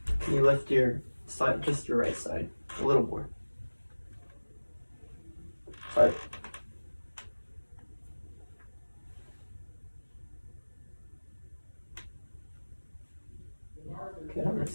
Can you lift your side, just your right side, a little more? Sorry. Okay, I'm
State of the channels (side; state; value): both; inverted; correlation -1.00